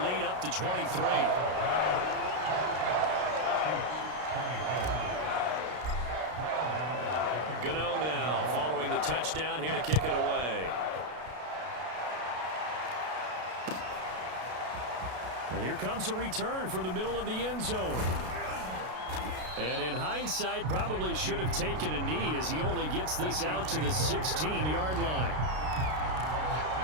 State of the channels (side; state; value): left; late; 33 ms